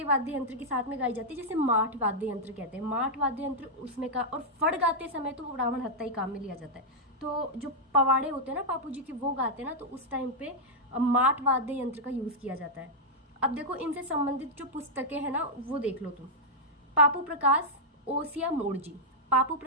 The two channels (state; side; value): normal; both; correlation -0.05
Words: वाद्य यंत्र के साथ में गाई जाती है, जैसे माठ वाद्य यंत्र कहते हैं। माठ वाद्य यंत्र उसमें का, और फड़ गाते समय तो रावण हत्ता ही काम में लिया जाता है। तो जो पवाड़े होते हैं ना पापू जी के, वो गाते हैं ना, तो उस टाइम पे माठ वाद्य यंत्र का यूज़ किया जाता है। अब देखो इनसे संबंधित जो पुस्तकें हैं ना, वो देख लो तुम। पापू प्रकाश ओसिया मोड़जी, पापू